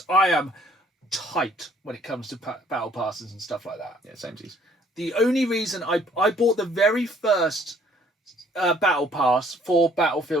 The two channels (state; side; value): normal; both; correlation 0.61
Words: I am tight when it comes to battle passes and stuff like that. Yeah, samesies. The only reason I bought the very first battle pass for